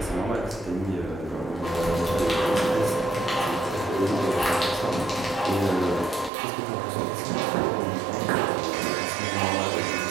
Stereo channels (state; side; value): drops out; left; at 6.3 s